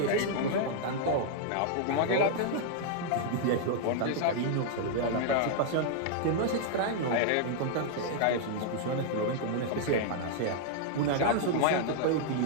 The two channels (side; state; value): both; different; correlation -0.01